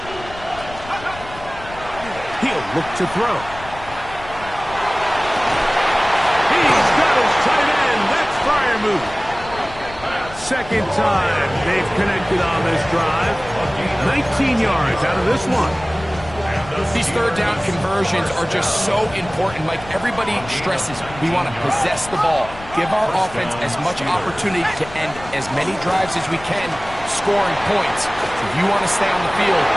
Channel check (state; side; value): noise; left; rumble, 16 dB below the sound